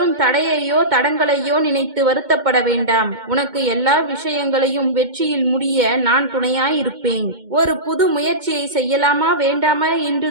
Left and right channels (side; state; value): left; late; 2.2 ms